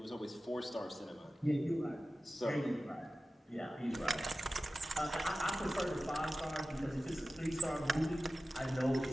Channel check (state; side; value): normal; both; correlation 0.95